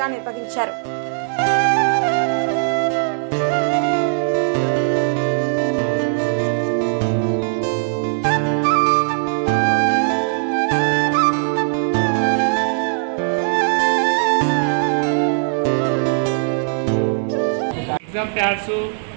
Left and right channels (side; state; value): left; silent; 63 dB below the other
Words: నిర్వహించారు. ఎగ్జామ్ ప్యాడ్స్,